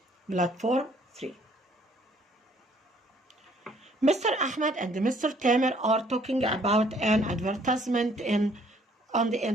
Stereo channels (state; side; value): normal; both; correlation 0.62